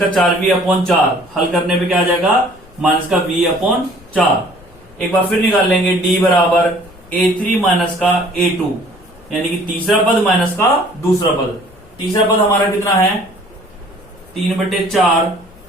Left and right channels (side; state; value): left; noise; rumble, 25 dB below the sound